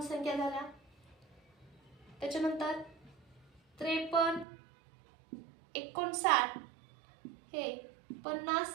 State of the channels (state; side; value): drops out; left; at 4.5 s